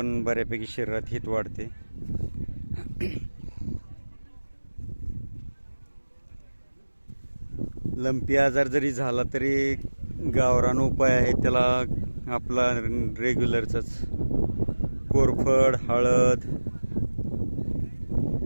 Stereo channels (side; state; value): both; inverted; correlation -1.00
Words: बऱ्यापैकी शरीरात हिट वाढते. लंपी आजार जरी झाला तरी गावरान उपाय आहे त्याला आपला रेग्युलरचाच. कोरफड, हळद,